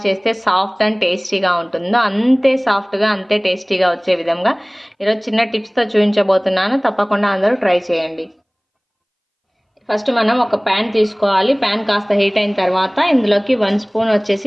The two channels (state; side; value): identical; both; correlation 1.00